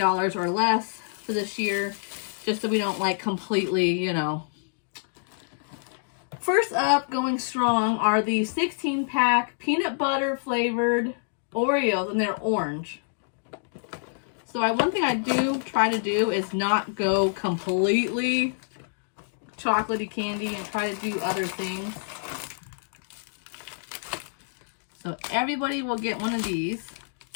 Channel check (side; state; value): right; silent; digital silence